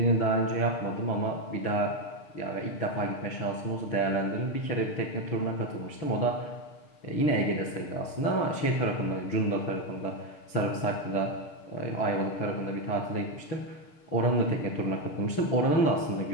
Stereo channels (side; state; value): right; late; 6.7 ms